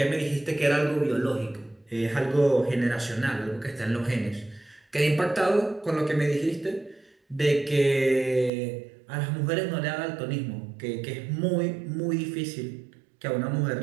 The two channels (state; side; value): drops out; left; at 8.5 s